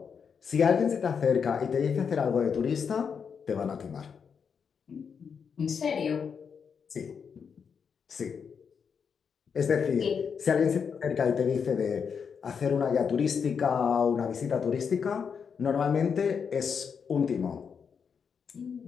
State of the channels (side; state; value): right; quieter; 6.5 dB